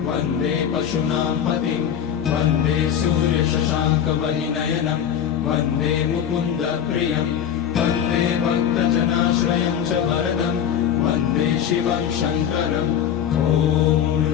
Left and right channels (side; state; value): right; quieter; 9.1 dB